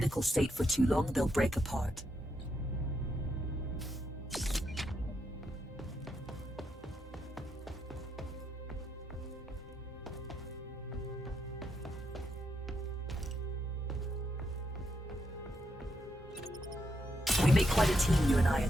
state for too long, they'll break apart. We make quite a team, you and I,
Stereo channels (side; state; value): both; normal; correlation 0.80